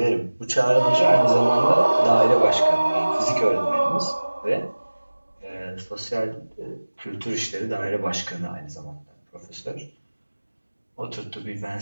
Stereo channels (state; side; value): inverted; both; correlation -1.00